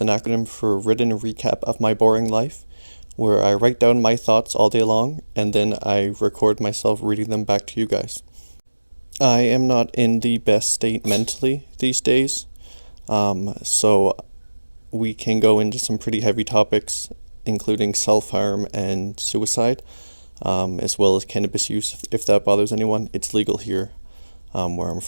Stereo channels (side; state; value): both; inverted; correlation -1.00